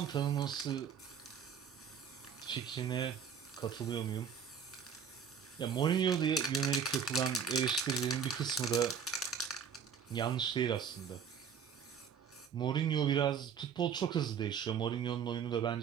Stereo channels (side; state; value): left; quieter; 7.0 dB